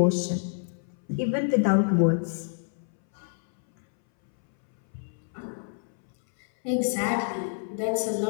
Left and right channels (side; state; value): right; silent; 60 dB below the other